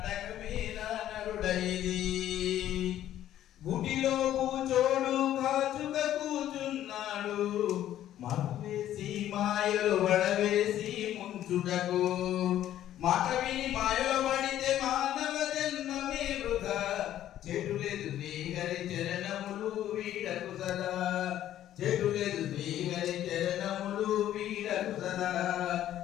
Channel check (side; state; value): right; quieter; 12.1 dB